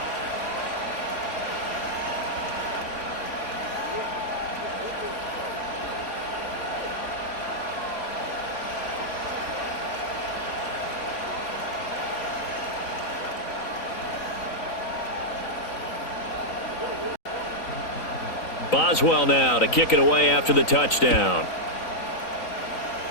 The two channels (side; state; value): right; late; 3.7 ms